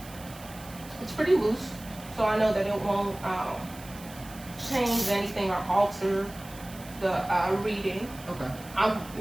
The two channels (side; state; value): right; noise; hiss, 18 dB below the sound